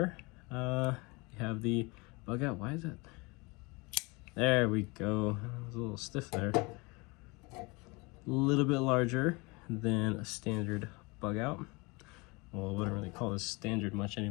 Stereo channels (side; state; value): right; quieter; 26.5 dB